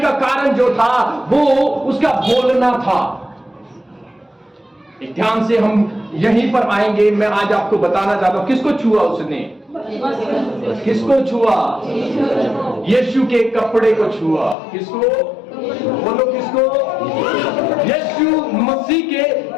कारण जो था वो उसका बोलना था। एक ध्यान से हम यहीं पर आएंगे। मैं आज आपको बताना चाहता हूं, किसको छुआ उसने? किसको छुआ? यीशु के कपड़े को छुआ। किसको? बोलो किसको? यीशु मसीह के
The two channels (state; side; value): drops out; right; at 14.6 s